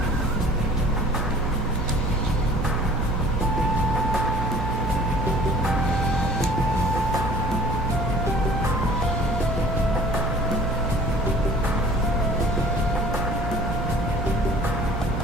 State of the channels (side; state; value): right; noise; hum, 5 dB below the sound